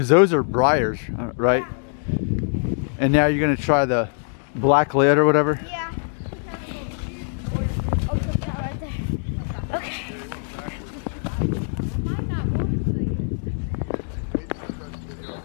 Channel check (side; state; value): right; silent; digital silence